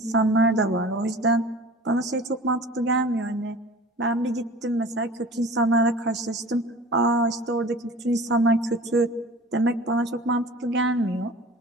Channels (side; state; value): both; normal; correlation 0.42